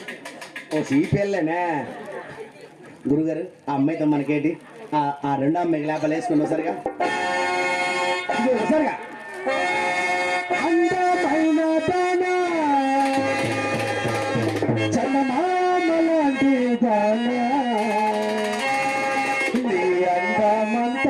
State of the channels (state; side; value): identical; both; correlation 1.00